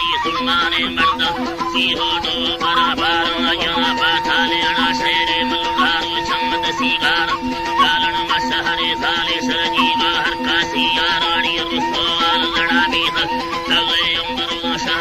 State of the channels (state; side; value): identical; both; correlation 1.00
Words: सुमाने मर्द सीहो दो बराबर या बाथाले अड़ा शेरे मलुदारो चमद सीगार लालन मसहरे साले सरजी बाहर कासी यारानी रुसवाल लड़ा बीत तवे अंबरो